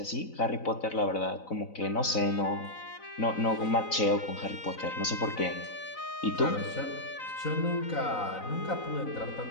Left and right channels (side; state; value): right; late; 4.0 ms